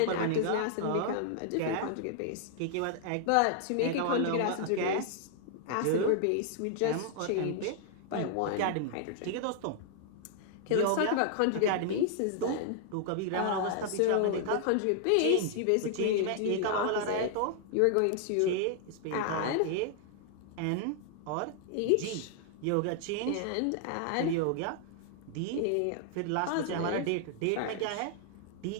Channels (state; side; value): different; both; correlation -0.01